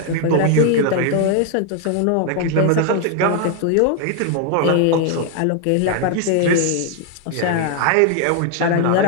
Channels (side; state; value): both; different; correlation 0.00